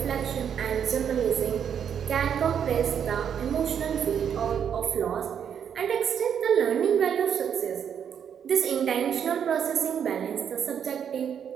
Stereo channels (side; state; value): left; quieter; 8.2 dB